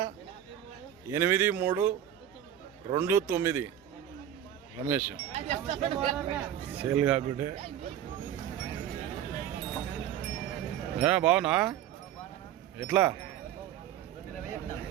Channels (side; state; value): left; quieter; 10.7 dB